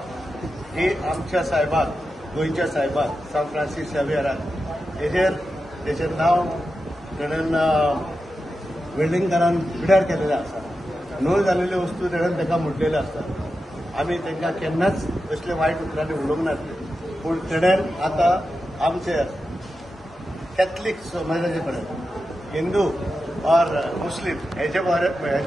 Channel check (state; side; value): normal; both; correlation 0.90